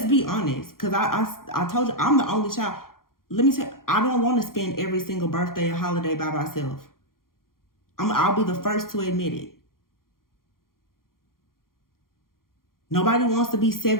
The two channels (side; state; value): right; late; 0.92 ms